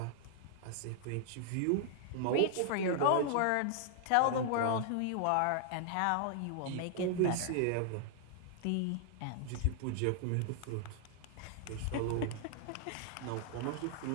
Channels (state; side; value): different; both; correlation -0.01